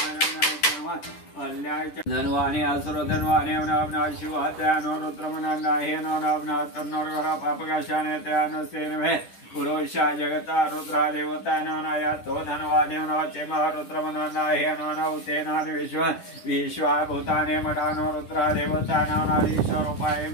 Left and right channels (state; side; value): late; right; 10 ms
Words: धनवाने असुर धनवाने शिवात्यानो रुद्रमनाहे पापकाशाने त्यानो सेनवे पुरुषा जगता रुद्रा देवता नानाया तो धनवाने नवचे रुद्रमनाहे नवते नान विश्वा भूताने मठानो रुद्रा देवता नानाधीश्वरूपाय